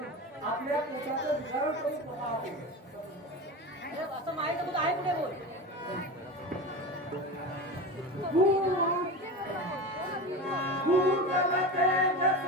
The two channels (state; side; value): normal; both; correlation 0.26